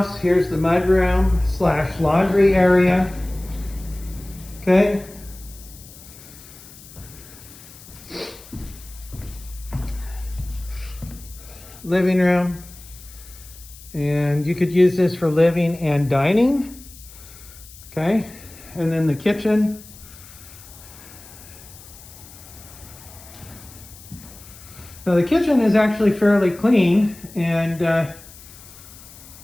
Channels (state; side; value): noise; left; hiss, 19 dB below the sound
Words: here's the mudroom / laundry area. Okay. Living room. And you could use this for living and dining. Okay. And then the kitchen. Now the kitchen is actually fairly clean and